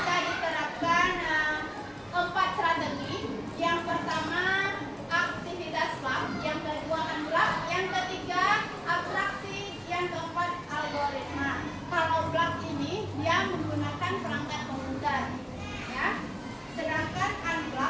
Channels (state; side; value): identical; both; correlation 1.00